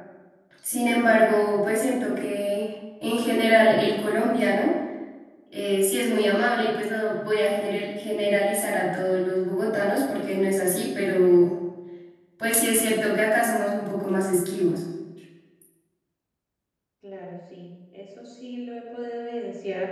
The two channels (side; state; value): both; identical; correlation 1.00